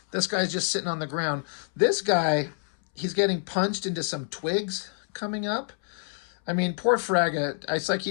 This guy's just sitting on the ground. This guy, he's getting punched into some twigs coming up. I mean, poor Fraga, it's like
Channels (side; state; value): right; silent; 60 dB below the other